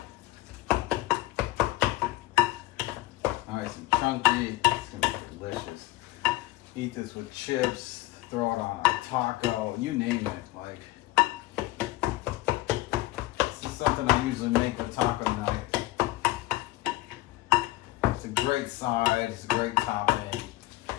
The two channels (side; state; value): right; quieter; 17.5 dB